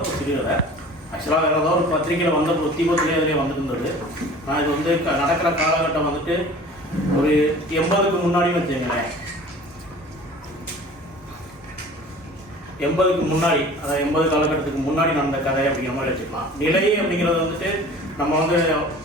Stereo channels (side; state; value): both; normal; correlation 0.44